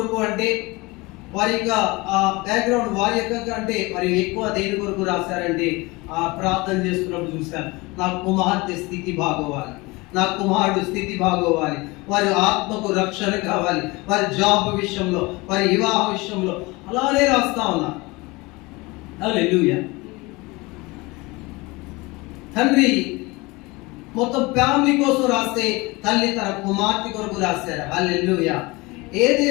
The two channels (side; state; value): right; quieter; 23.8 dB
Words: అంటే వారి యొక్క బ్యాక్గ్రౌండ్ వారి యొక్క అంటే మరి ఎక్కువ దేని కొరకు రాశారంటే ప్రార్థన చేస్తున్నప్పుడు చూశాను, నా కుమార్తె స్థితి బాగోవాలి, నా కుమారుడు స్థితి బాగోవాలి, వారి ఆత్మకు రక్షణ కావాలి, వారి జాబ్ విషయంలో, వారి వివాహ విషయంలో అలానే రాస్తా ఉన్నా. హల్లెలూయా. తండ్రి మొత్తం ఫ్యామిలీ కోసం రాస్తే తల్లి తన కుమార్తె కొరకు రాశారు. హల్లెలూయా.